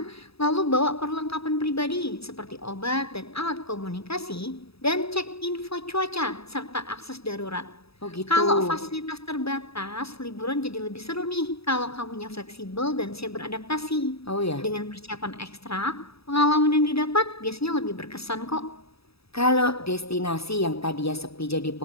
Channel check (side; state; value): right; late; 0.77 ms